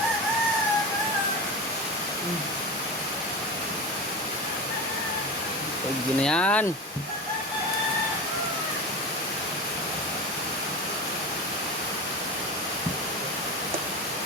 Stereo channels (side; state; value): both; normal; correlation 0.26